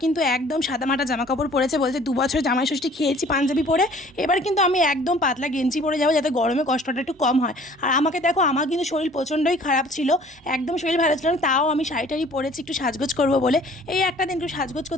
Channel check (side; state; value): both; normal; correlation 0.53